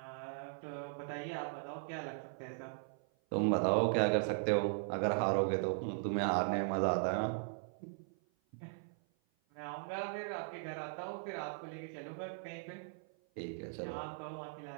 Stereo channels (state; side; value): silent; left; 52 dB below the other